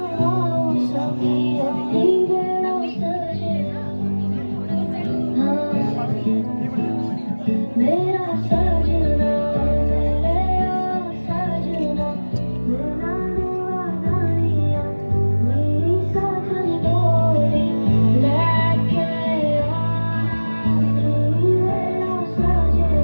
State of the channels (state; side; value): inverted; both; correlation -1.00